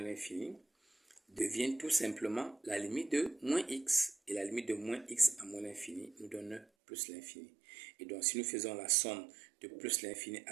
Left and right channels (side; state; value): left; drops out; at 6.7 s